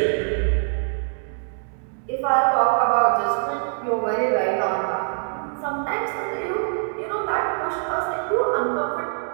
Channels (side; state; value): left; silent; 62 dB below the other